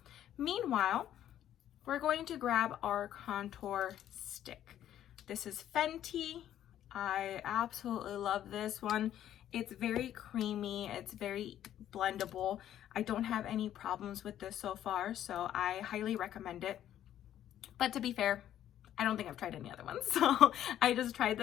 Meanwhile, we're going to grab our contour stick. This is Fenty. I absolutely love this one. It's very creamy. It's very blendable. I don't have any problems with this so far, so I highly recommend it. But to be fair, I don't think I've tried any other ones. So I just tried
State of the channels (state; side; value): quieter; right; 11.4 dB